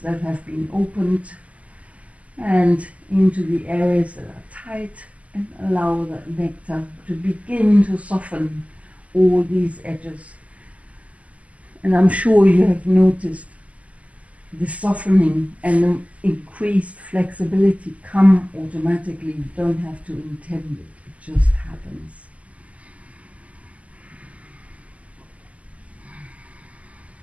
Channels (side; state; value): left; late; 0.069 ms